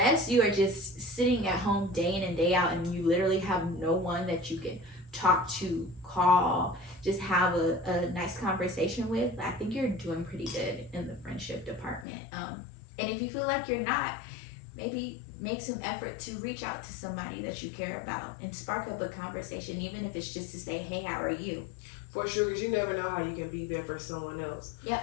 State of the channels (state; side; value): drops out; right; at 12.1 s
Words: you are just sitting at home day in and day out and you literally have no one that you can talk to, call, just have a nice conversation with, I think you're doing pretty good in the friendship department. And if you feel like you're not, maybe make some effort to reach out to somebody that you care about and spark up a conversation, even if it's just to say, hey, how are you? For sure, because you never know how you can be there for someone else. Yep.